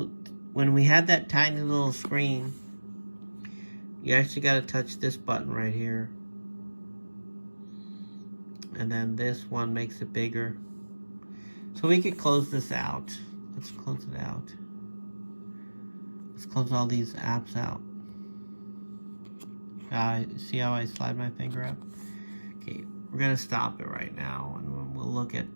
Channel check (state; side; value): inverted; both; correlation -1.00